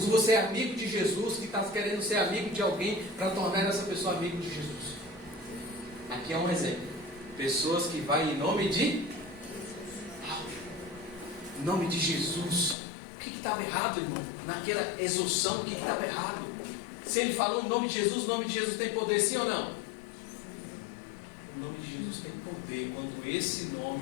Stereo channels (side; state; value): right; drops out; at 12.8 s